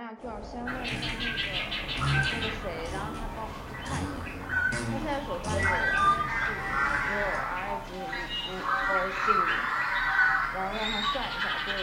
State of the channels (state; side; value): identical; both; correlation 1.00